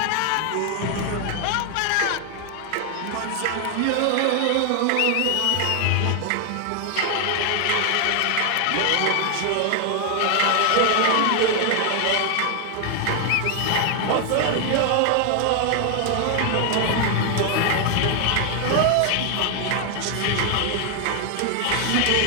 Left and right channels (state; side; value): different; both; correlation 0.00